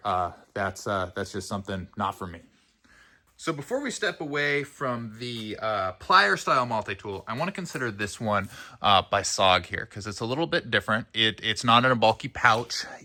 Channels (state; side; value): identical; both; correlation 1.00